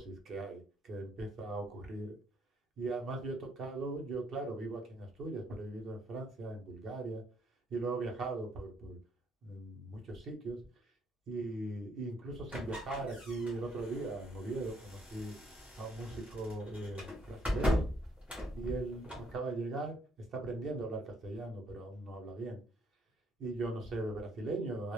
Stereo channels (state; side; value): normal; both; correlation 0.70